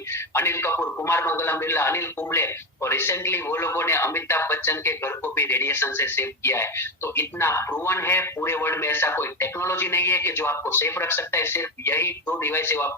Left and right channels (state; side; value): normal; both; correlation 0.15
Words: अनिल कपूर, कुमार मंगलम बिरला, अनिल कुंबले, और रिसेंटली वो लोगों ने अमिताभ बच्चन के घर को भी रेडिएशन से सेव किया है। तो इतना प्रूवन है, पूरे वर्ल्ड में ऐसा कोई टेक्नोलॉजी नहीं है कि जो आपको सेफ रख सकता है, सिर्फ यही 2 डिवाइस है वो